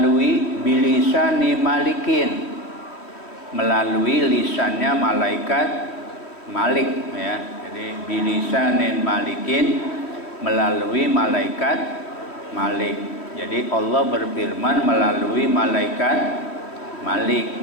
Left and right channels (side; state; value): right; late; 3.1 ms